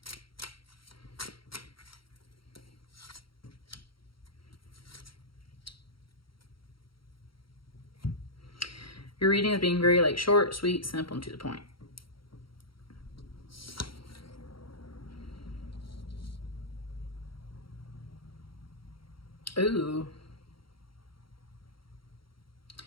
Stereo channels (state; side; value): late; right; 0.74 ms